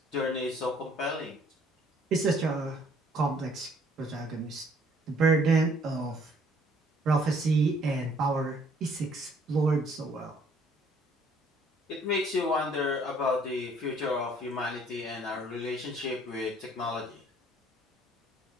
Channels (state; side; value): normal; both; correlation 0.61